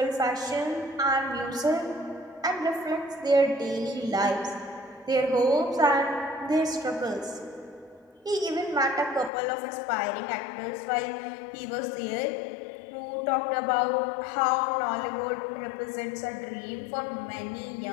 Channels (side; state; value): right; drops out; at 9.3 s